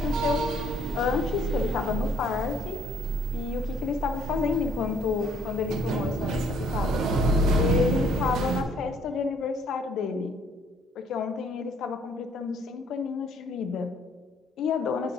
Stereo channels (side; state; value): both; normal; correlation 0.63